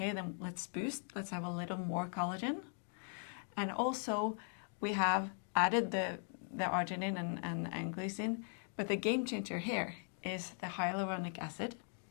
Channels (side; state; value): right; silent; 51 dB below the other